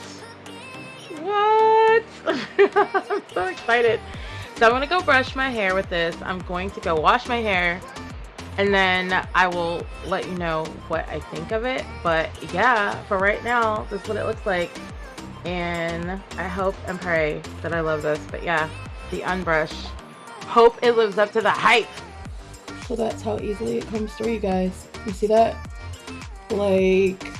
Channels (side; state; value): both; identical; correlation 1.00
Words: I'm so excited. So I'm gonna go brush my hair with this. I'm going to go wash my hair, and then I will let you know what I think of it. But yeah, for right now, this is what it looks like. And I hope and pray that I love this. But yeah, the Unbrush. Hope it lives up to the hype. So that's how easily it comes through, you guys. You see that? Like,